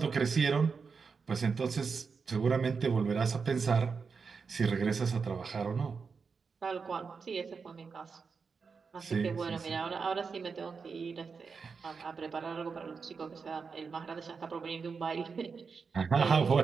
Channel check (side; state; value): left; quieter; 5.3 dB